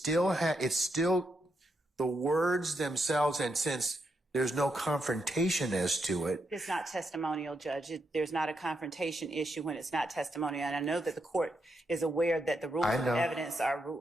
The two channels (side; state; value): both; normal; correlation 0.82